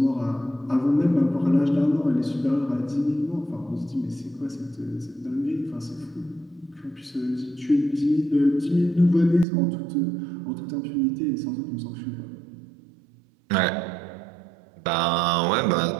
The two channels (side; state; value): left; drops out; at 9.5 s